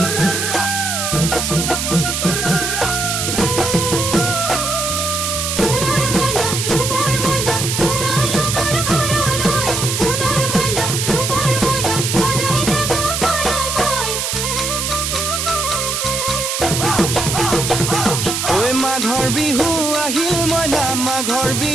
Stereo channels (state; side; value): noise; right; hiss, 1 dB below the sound